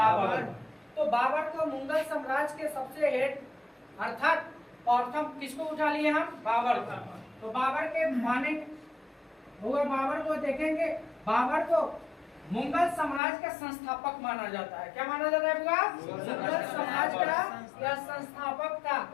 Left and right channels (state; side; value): drops out; right; at 13.2 s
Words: तो बाबर को मुगल साम्राज्य के सबसे हेड अर्थात प्रथम किसको उठा लिए हम, बाबर को। तो बाबर के माने हुआ, बाबर को देखेंगे, बाबर को मुगल साम्राज्य का संस्थापक माना जाता है। क्या माना जाता है बुआ, मुगल साम्राज्य का यह संस्थापक था